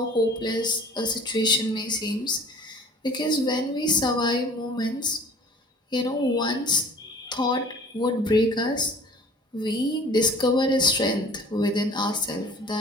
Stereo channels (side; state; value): both; normal; correlation 0.48